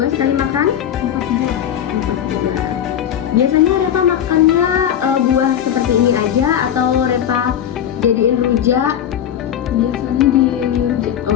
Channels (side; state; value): right; quieter; 9.8 dB